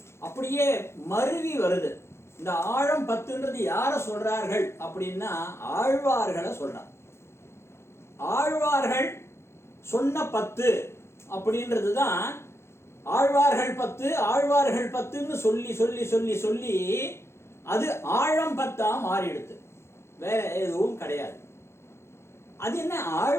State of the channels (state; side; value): late; right; 0.13 ms